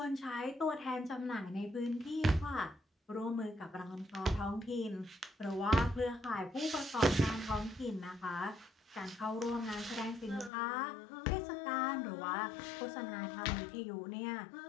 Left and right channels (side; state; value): right; drops out; at 10.5 s